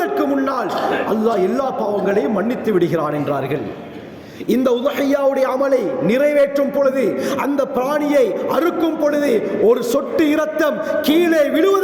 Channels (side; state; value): both; identical; correlation 1.00